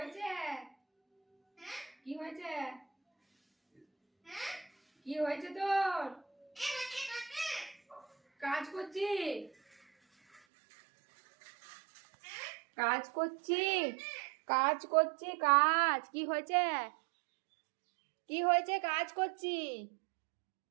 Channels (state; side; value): drops out; left; at 10.4 s